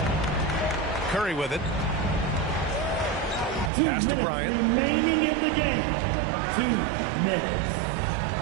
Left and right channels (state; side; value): drops out; left; at 3.7 s